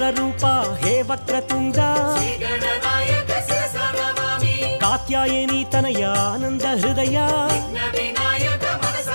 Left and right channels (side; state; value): both; inverted; correlation -1.00